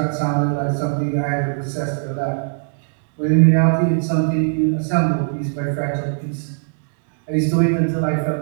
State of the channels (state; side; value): silent; left; digital silence